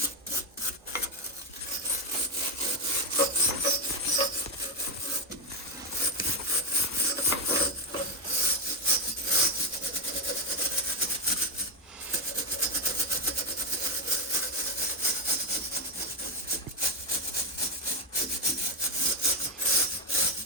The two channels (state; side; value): normal; both; correlation 0.06